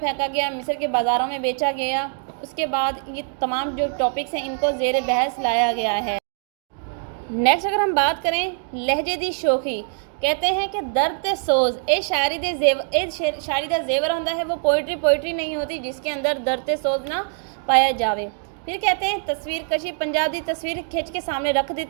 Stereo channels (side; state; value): left; silent; 63 dB below the other